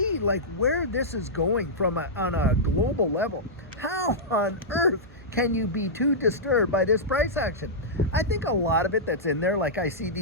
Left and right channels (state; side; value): normal; both; correlation -0.12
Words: like where this is going from on a global level, how on earth can you be too disturbed by this price action? I think a lot of it that's in there, like I see